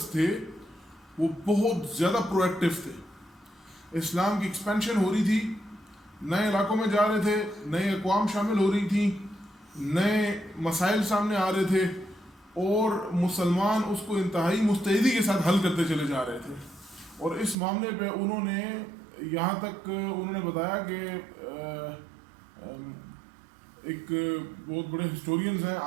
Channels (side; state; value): left; drops out; at 17.6 s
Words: تھے وہ بہت زیادہ پرو ایکٹیو تھے. اسلام کی ایکسپینشن ہو رہی تھی، نئے علاقوں میں جا رہے تھے، نئے اقوام شامل ہو رہی تھیں، نئے مسائل سامنے آ رہے تھے اور مسلمان اس کو انتہائی مستعدی کے ساتھ حل کرتے چلے جا رہے تھے. اور اس معاملے پہ انہوں نے یہاں تک انہوں نے بتایا کہ ایک بہت بڑے ہسٹورینز ہیں،